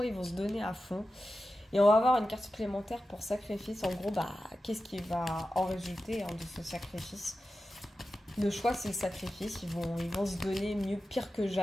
ils vont se donner à fond. Et on va avoir une carte supplémentaire pour sacrifice. En gros, qu'est-ce qui va en résulter hein, de ce sacrifice? Le choix, c'est le sacrifice. Ils vont se donner pire que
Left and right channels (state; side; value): normal; both; correlation 0.93